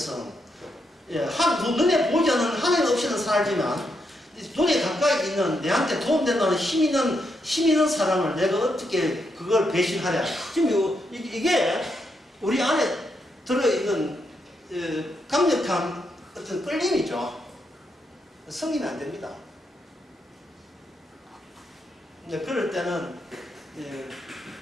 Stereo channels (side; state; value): both; normal; correlation 0.80